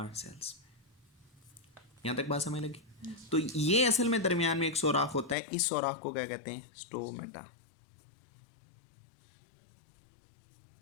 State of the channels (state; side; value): drops out; right; at 5.4 s